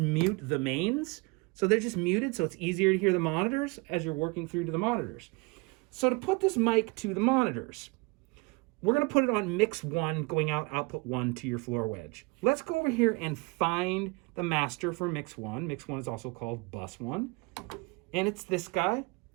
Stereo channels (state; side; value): quieter; left; 26.8 dB